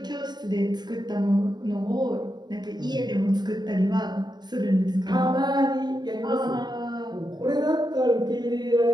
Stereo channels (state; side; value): late; left; 0.20 ms